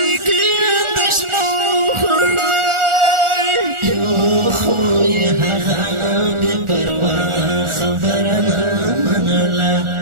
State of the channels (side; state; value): left; late; 1.4 ms